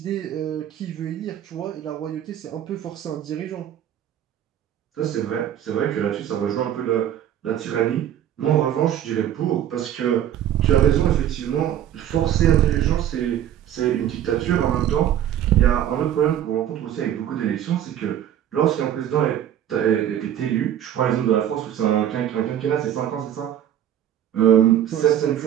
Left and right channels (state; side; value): quieter; left; 10.8 dB